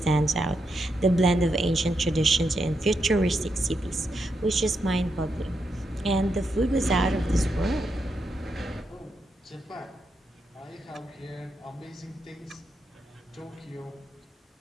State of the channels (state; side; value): normal; both; correlation 0.83